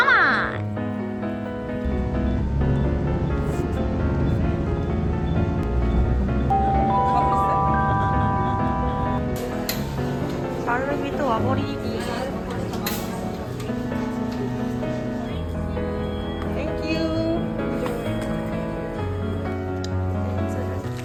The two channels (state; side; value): identical; both; correlation 1.00